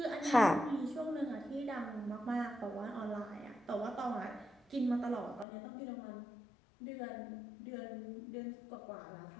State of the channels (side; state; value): right; drops out; at 5.5 s